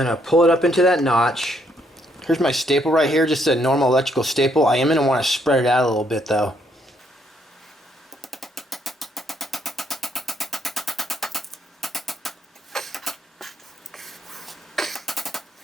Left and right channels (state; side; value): normal; both; correlation 0.71